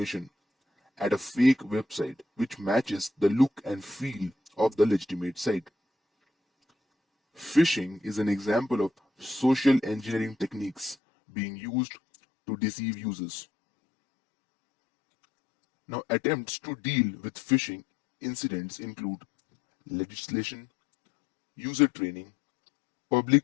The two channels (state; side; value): drops out; right; at 11.0 s